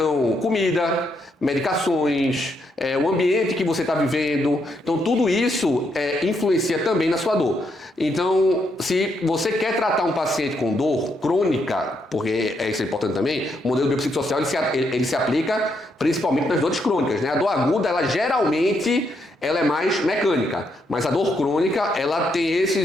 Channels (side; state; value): both; normal; correlation 0.77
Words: comida, medicações, o ambiente que você está vivendo. Então tudo isso influencia também na sua dor. Então, se você quer tratar um paciente com dor crônica, porque isso é importante também, o modelo biopsicossocial ele se aplica principalmente nas dores crônicas, né? A dor aguda, ela geralmente é mais mecânica, mas a dor crônica, ela tem